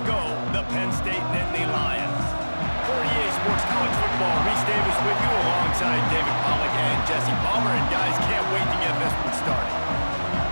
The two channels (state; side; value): inverted; both; correlation -1.00